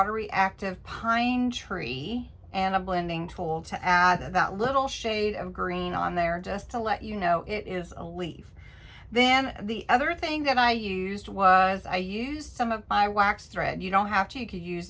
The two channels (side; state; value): both; identical; correlation 1.00